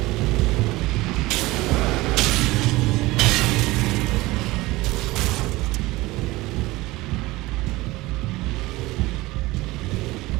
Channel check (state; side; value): quieter; left; 20.0 dB